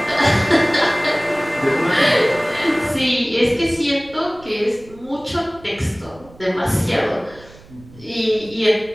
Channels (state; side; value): noise; right; rumble, 22 dB below the sound